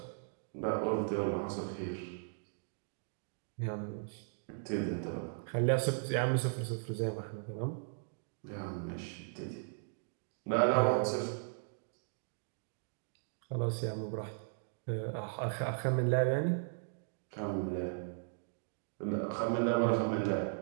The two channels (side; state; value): left; silent; digital silence